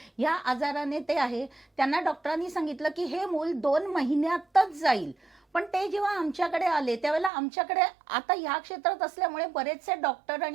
या आजाराने ते आहे. त्यांना डॉक्टरांनी सांगितलं की हे मूल 2 महिन्यातच जाईल. पण ते जेव्हा आमच्याकडे आले त्यावेळेला आमच्याकडे आता ह्या क्षेत्रात असल्यामुळे बरेचसे डॉक्टर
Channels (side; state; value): left; drops out; at 7.3 s